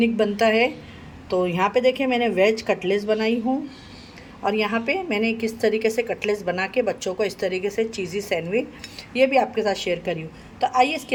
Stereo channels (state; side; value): identical; both; correlation 1.00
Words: बनता है। तो यहाँ पे देखिए, मैंने वेज कटलेट्स बनाई हूँ। और यहाँ पे मैंने किस तरीके से कटलेट्स बना के बच्चों को इस तरीके से चीज़ी सैंडविच ये भी आपके साथ शेयर करी हूँ। तो आइए इसकी